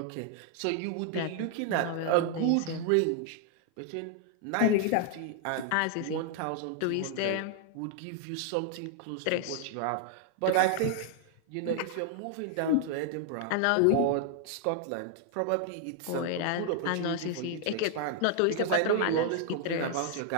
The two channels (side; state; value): both; different; correlation 0.00